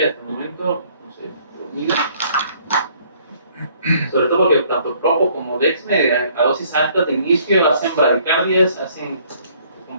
hasta el momento, no sé, sobre todo porque tanto Propo como Dexme a dosis altas de inicio hacen bradicardias,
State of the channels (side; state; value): both; inverted; correlation -0.61